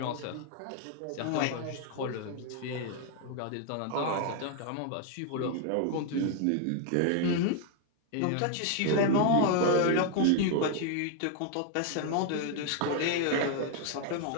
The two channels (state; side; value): different; both; correlation 0.00